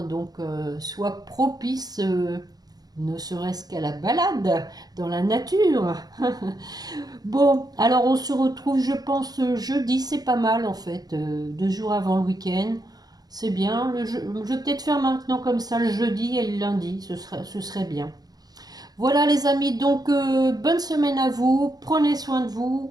donc soit propice, ne serait-ce qu'à la balade dans la nature. Bon, alors on se retrouve, je pense, jeudi, c'est pas mal en fait, 2 jours avant le week-end. C'est bien, je vais peut-être faire maintenant comme ça le jeudi et le lundi, ce serait bien. Voilà les amis, donc bonne semaine à vous, prenez soin de vous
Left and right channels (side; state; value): left; late; 0.19 ms